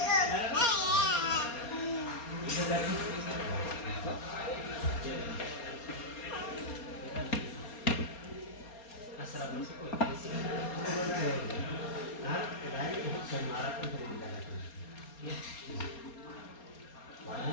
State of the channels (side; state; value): right; late; 4.3 ms